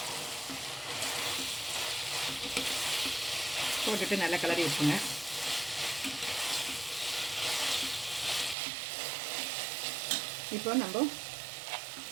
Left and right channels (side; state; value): left; drops out; at 8.6 s